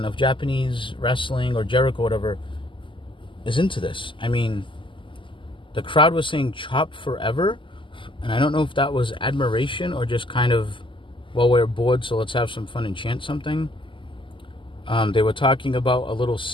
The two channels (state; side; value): late; right; 0.25 ms